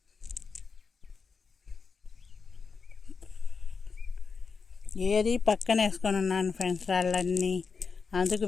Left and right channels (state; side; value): quieter; right; 5.2 dB